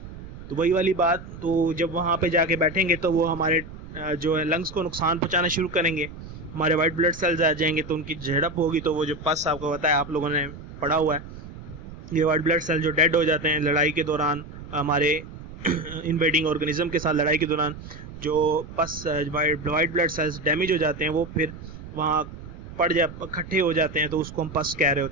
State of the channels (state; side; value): noise; right; rumble, 14 dB below the sound